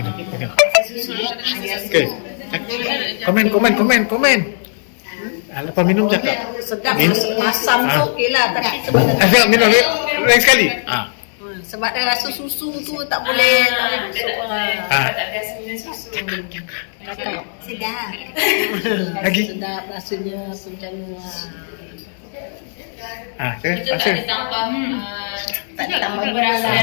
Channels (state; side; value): silent; right; digital silence